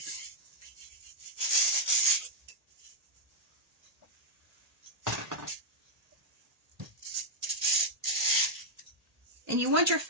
And you want your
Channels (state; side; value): late; left; 1.8 ms